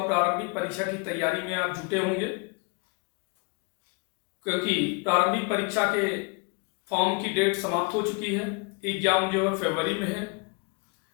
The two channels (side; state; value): right; quieter; 31.6 dB